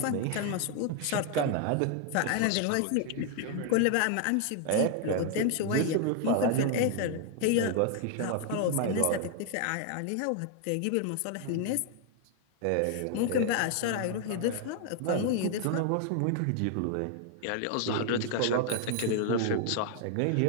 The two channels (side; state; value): both; different; correlation 0.00